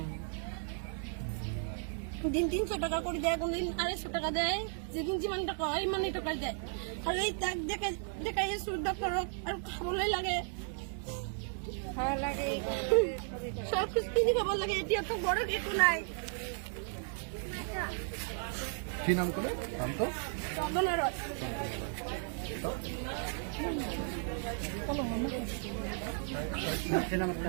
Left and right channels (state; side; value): silent; left; 55 dB below the other